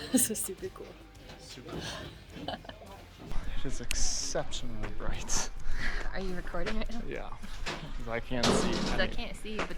This is super cool. Super fun. It is exceptionally bright. Are you recording right now? Yeah, because I can't see. I can't see, but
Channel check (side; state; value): both; identical; correlation 1.00